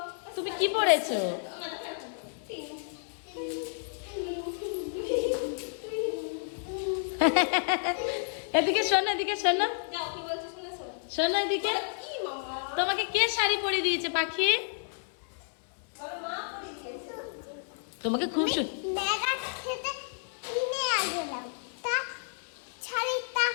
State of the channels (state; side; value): silent; right; 56 dB below the other